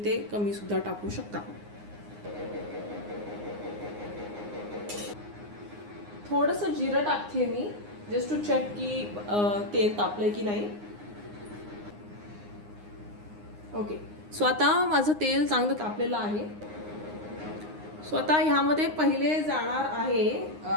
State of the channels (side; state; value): left; late; 9.7 ms